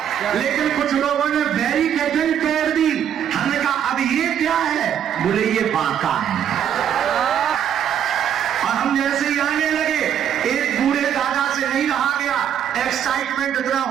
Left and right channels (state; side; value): quieter; left; 9.3 dB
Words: लेकिन कुछ लोगों ने बैरिकेडिंग कर दी। हमने कहा अब ये क्या है? बोले ये बांका है। और हम जैसे ही आने लगे, एक बूढ़े दादा से नहीं रहा गया, एक्साइटमेंट इतना